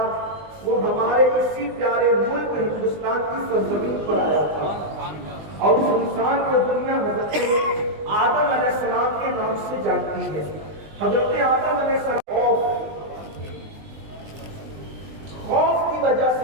وہ ہمارے اسی پیارے ملک ہندوستان کی سرزمین پر آیا تھا، اور اس انسان کو دنیا حضرت آدم علیہ السلام کے نام سے جانتی ہے۔ حضرت آدم علیہ السلام خوف کی وجہ سے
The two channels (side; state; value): left; late; 20 ms